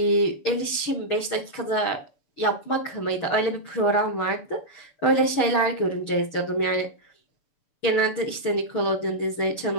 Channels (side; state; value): right; late; 6.9 ms